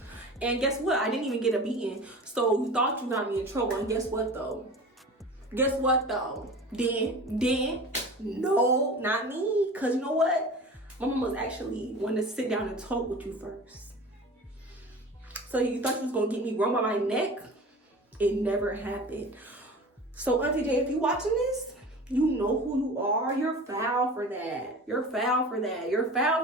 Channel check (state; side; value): normal; both; correlation 0.37